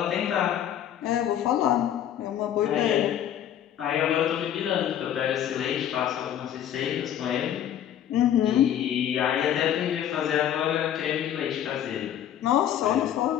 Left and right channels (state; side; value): quieter; right; 10.5 dB